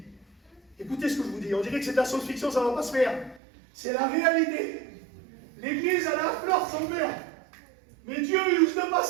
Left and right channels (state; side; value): drops out; left; at 3.4 s